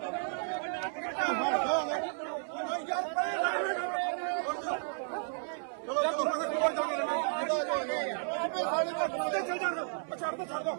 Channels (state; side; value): silent; left; 56 dB below the other